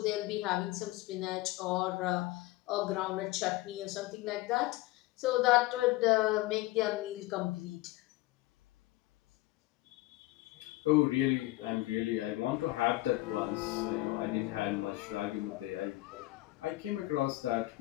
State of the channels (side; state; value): right; quieter; 18.6 dB